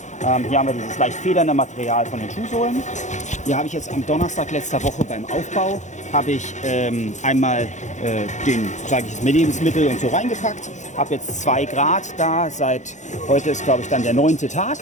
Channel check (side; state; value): right; late; 0.35 ms